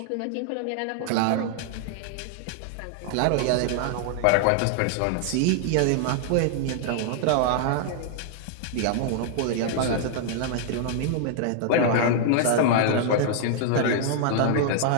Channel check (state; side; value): different; both; correlation -0.01